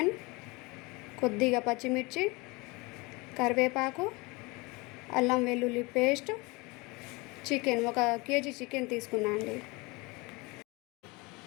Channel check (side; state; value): right; quieter; 25.5 dB